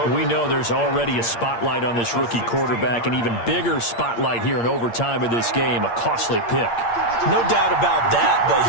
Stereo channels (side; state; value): right; late; 8.6 ms